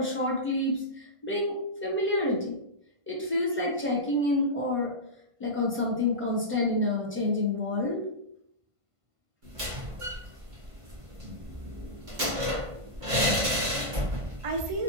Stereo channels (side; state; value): left; late; 1.5 ms